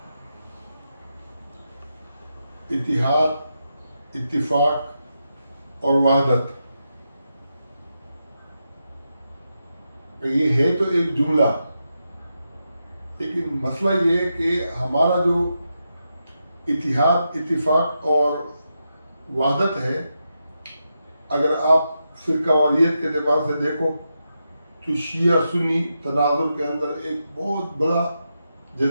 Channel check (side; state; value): both; inverted; correlation -0.86